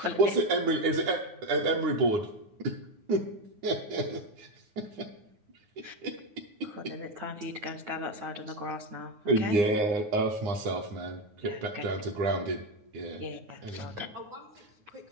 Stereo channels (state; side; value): late; left; 9.6 ms